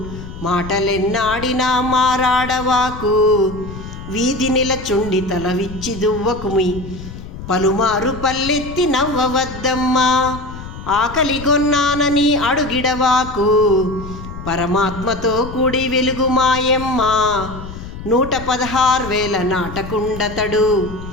మాటలెన్నాడినా మారాడవాకు, వీధి నిలచుండి తల విచ్చి దువ్వకుమి, పలుమారు పల్లెత్తి నవ్వవద్దమ్మా, ఆకలిగొన్నానని అడుగిడవాకు, పరమాత్మతో కూడి వెలుగు మాయమ్మ, 116,000 నాటకుండతడు,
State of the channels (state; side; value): noise; left; rumble, 12 dB below the sound